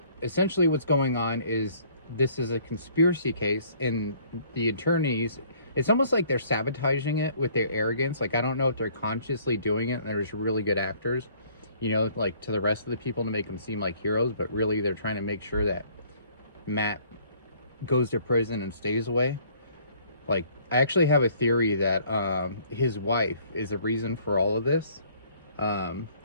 essentially, what's going on is this is a conspiracy case, and the attorneys, it's almost like they're sabotaging it with their arrogance. Like, I don't know if they're consciously doing it, and they're just really good actors, like to the rest of the people to make them seem like heroes, but really they're trying to make sure that Matt goes to prison and stays away. Like, I actually have a theory that his wife is the reason for all of this.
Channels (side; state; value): both; inverted; correlation -0.59